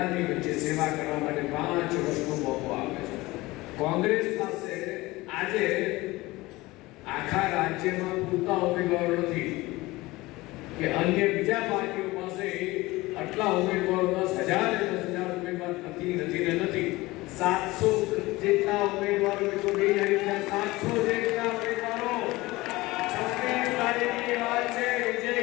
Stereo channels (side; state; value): right; quieter; 20.3 dB